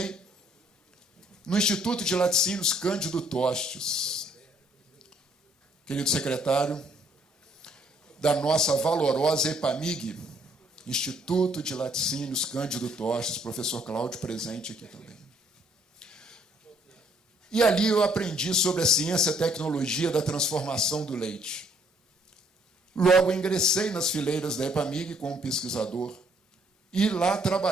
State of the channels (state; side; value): normal; both; correlation 0.65